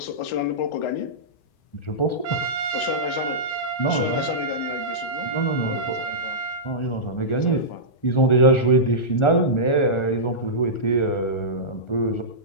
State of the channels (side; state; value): right; late; 1.4 ms